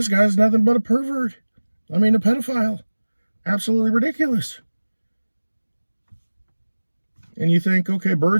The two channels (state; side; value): inverted; both; correlation -1.00